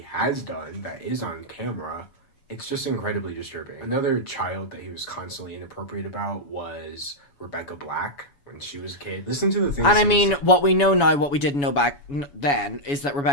has done that is on camera, it's just incredibly disturbing. Another child that he was constantly inappropriate about was Rebecca Black when she was a kid. Listen to the things. And I mean, what we know now, what we didn't know back then, is that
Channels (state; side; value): late; right; 7.1 ms